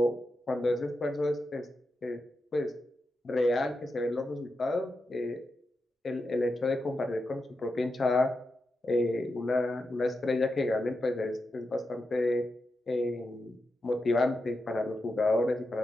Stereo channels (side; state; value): both; normal; correlation 0.88